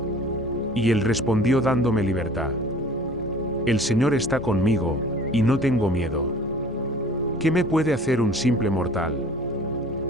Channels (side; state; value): both; normal; correlation 0.48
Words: Y él respondió dándome libertad. El Señor está conmigo, y no tengo miedo. ¿Qué me puede hacer un simple mortal?